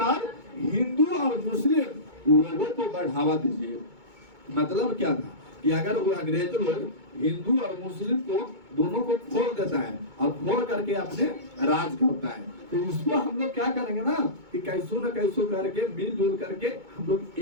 हिंदू और मुस्लिम लोगों को बढ़ावा दीजिए। मतलब क्या था कि अगर वो अंग्रेज लोग हिंदू और मुस्लिम को दोनों को खोल देता है और खोल करके अपने राज करता है, तो इसको हम लोग क्या करेंगे ना कि कैसो न कैसो करके मिलजुल करके हम लोग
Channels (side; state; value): left; late; 2.2 ms